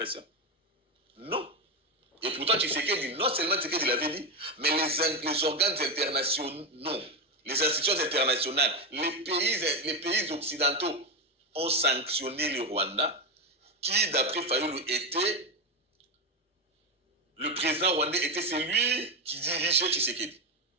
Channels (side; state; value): both; normal; correlation 0.10